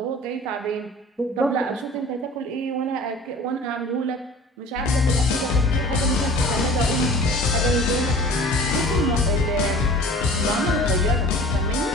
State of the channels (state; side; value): normal; both; correlation 0.42